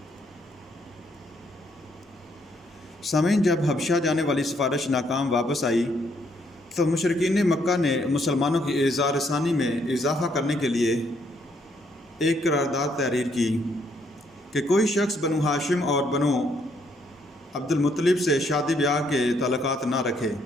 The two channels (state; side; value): normal; both; correlation 0.71